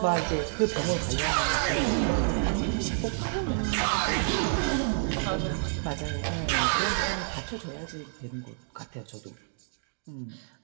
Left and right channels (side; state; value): left; silent; digital silence